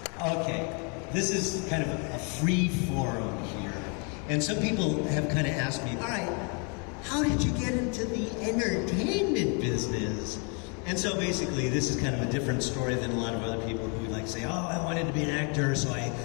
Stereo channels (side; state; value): right; quieter; 36.7 dB